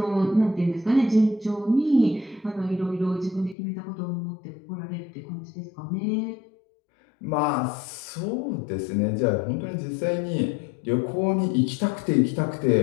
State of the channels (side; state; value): right; drops out; at 3.6 s